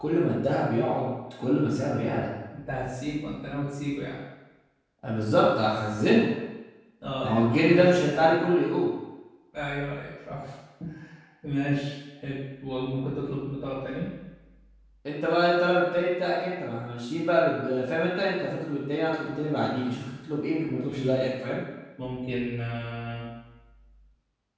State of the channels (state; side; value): identical; both; correlation 1.00